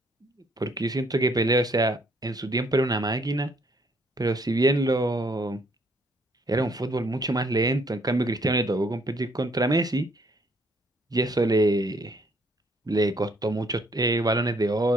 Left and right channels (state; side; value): normal; both; correlation 0.66